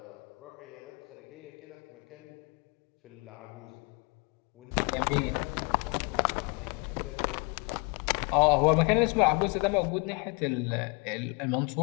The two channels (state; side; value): quieter; right; 31.8 dB